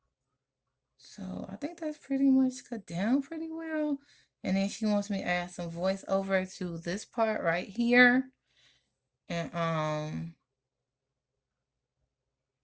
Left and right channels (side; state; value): both; identical; correlation 1.00